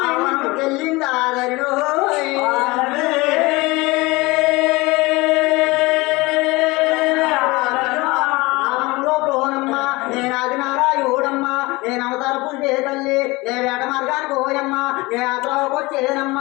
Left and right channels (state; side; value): quieter; right; 22.7 dB